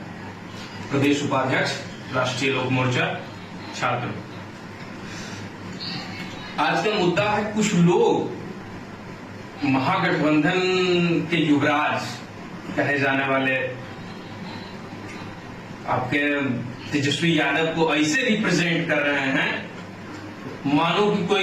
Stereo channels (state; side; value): identical; both; correlation 1.00